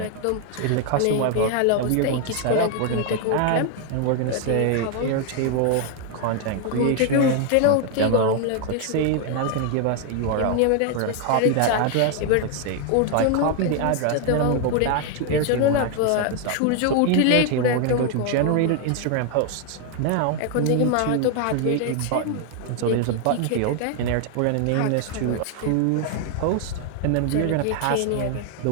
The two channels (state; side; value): different; both; correlation 0.00